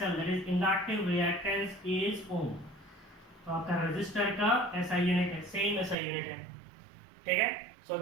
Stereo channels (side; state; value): left; drops out; at 6.0 s